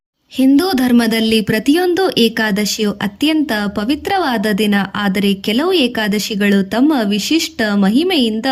ಹಿಂದೂ ಧರ್ಮದಲ್ಲಿ ಪ್ರತಿಯೊಂದು ಏಕಾದಶಿಯು ಅತ್ಯಂತ ಪವಿತ್ರವಾದ ದಿನ. ಆದರೆ ಕೆಲವು ಏಕಾದಶಿಗಳು ತಮ್ಮ ವಿಶಿಷ್ಟ ಮಹಿಮೆಯಿಂದ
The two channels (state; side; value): identical; both; correlation 1.00